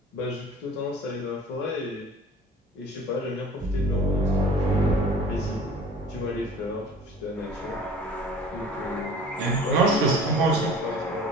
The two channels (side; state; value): both; normal; correlation 0.45